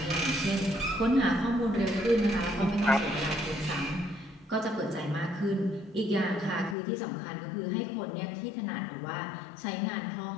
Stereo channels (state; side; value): drops out; right; at 6.8 s